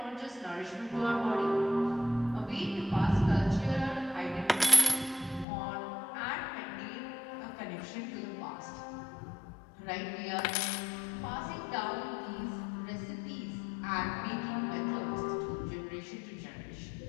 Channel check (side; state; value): right; drops out; at 5.5 s